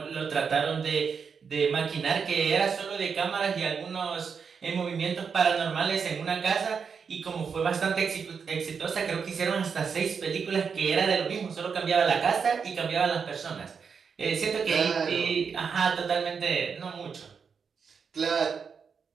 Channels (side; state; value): left; quieter; 6.1 dB